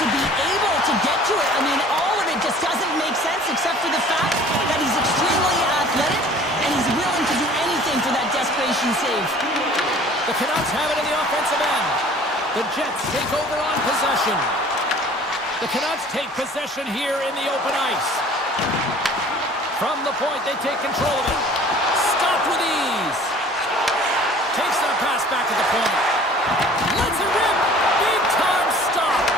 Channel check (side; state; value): both; normal; correlation 0.49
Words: be able to get to it. I mean, all of it just doesn't make sense except for the fact that he's extremely athletic and he's willing to do anything for that desperation save. The Canucks have it in the offensive end. The Jets take over on possession. The Canucks take possession here in the open ice. From the point, they take control of it. Stopped with ease. Takes that pass back to the point. Lets it rip. Big time stop.